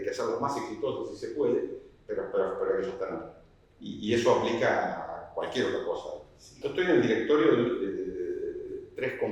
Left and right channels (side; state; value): both; identical; correlation 1.00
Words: hacerlas más exitosas si se puede, pero hay que sostenerlas. Y eso aplica a cualquier otra cosa. Yo estoy en el directorio de 3